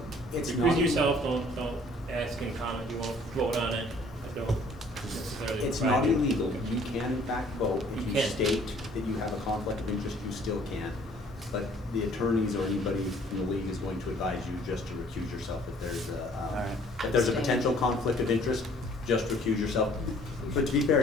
It's recuse not- yourself, don't ask and comment, you won't vote on it, don't necessarily. It's provide not it. illegal. You can in fact vote. If You you can. state that you have a conflict of interest, you still can. But the attorneys or anybody in the league is going to advise you just to recuse yourself if there's if there's a potential conflict of interest, just recuse yourself. But to be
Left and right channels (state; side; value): normal; both; correlation 0.57